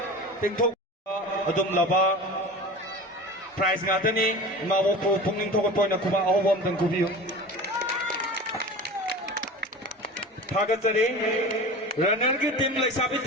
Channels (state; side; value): normal; both; correlation 0.34